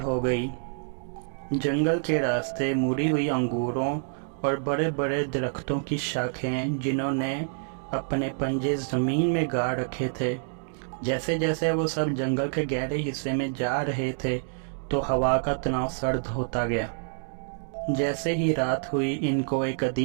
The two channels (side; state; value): left; silent; digital silence